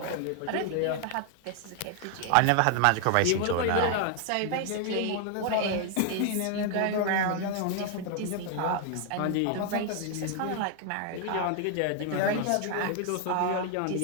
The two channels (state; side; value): different; both; correlation 0.00